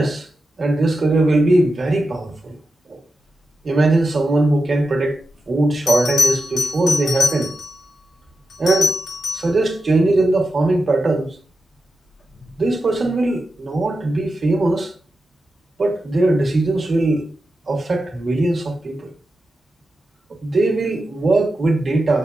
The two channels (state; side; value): normal; both; correlation 0.90